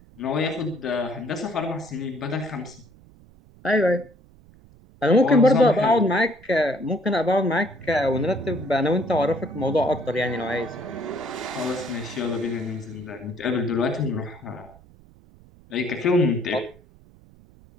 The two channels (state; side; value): noise; right; rumble, 25 dB below the sound